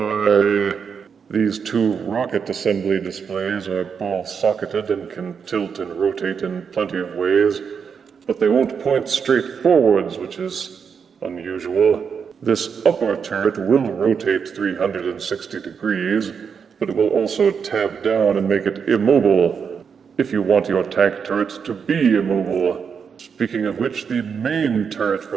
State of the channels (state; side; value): quieter; left; 6.5 dB